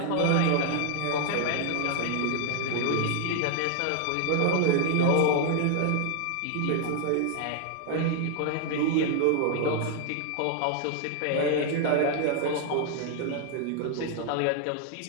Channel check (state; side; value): different; both; correlation 0.00